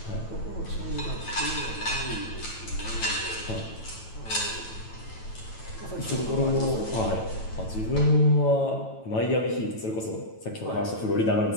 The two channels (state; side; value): late; right; 9.1 ms